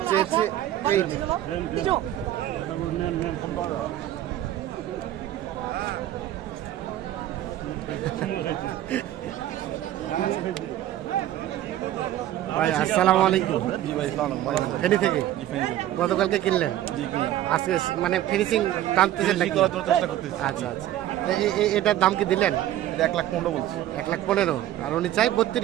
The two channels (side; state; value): left; quieter; 13.0 dB